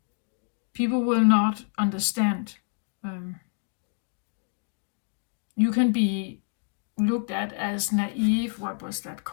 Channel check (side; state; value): right; silent; 60 dB below the other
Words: people will not understand. You can be looked at as naive. What was that